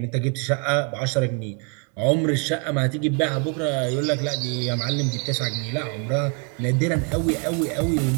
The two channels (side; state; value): left; quieter; 36.7 dB